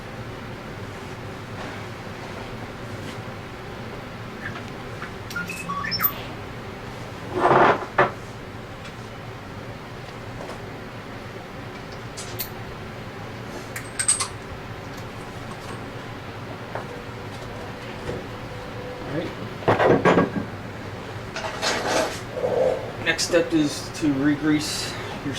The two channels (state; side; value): identical; both; correlation 1.00